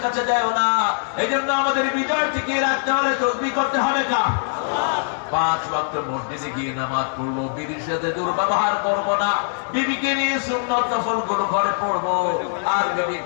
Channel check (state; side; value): silent; right; digital silence